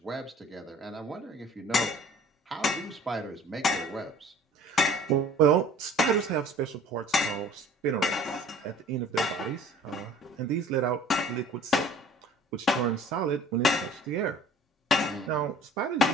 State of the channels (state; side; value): normal; both; correlation 0.49